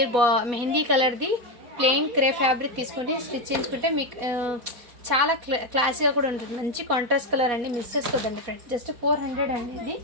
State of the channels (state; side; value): late; left; 4.1 ms